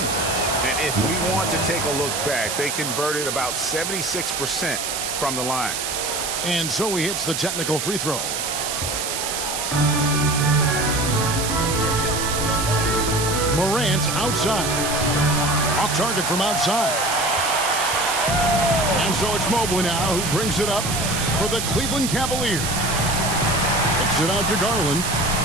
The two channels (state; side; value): noise; right; hiss, 3 dB below the sound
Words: And if we want to take a look back, they converted about 76% from the line. And so he hits the technical free throw. Morant outside. Off target from outside. And so it's Mobley now who brings it up for the Cleveland Cavaliers. Kicks it out to Garland.